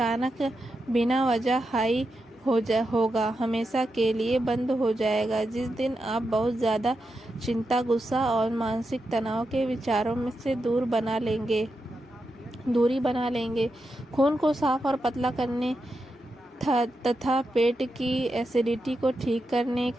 बिना वजह हाई होगा हमेशा के लिए बंद हो जाएगा। जिस दिन आप बहुत ज़्यादा चिंता, गुस्सा और मानसिक तनाव के विचारों में से दूरी बना लेंगे। खून को साफ और पतला करने तथा पेट की एसिडिटी को ठीक करने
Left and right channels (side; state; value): both; normal; correlation 0.87